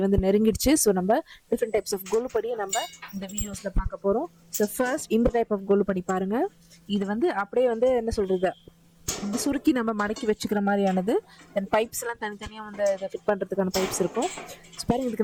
வந்து நெருங்கிடுச்சு. ஸோ நம்ம டிஃப்ரெண்ட் டைப்ஸ் ஆஃப் கோலுப்படியை நம்ம இந்த வீடியோஸ்ல பார்க்க போறோம். ஸோ ஃபர்ஸ்ட் இந்த டைப் ஆஃப் கோலுப்படி பாருங்க. இது வந்து அப்படியே வந்து என்ன சொல்றது, இந்த சுருக்கி நம்ம மடக்கி வச்சுக்கிற மாதிரியானது. தென் பைப்ஸ் எல்லாம் தனித்தனியாக வந்து இதை ஃபிட் பண்ணுறதுக்கான பைப்ஸ் இருக்கும். ஸோ பாருங்க,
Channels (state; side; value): identical; both; correlation 1.00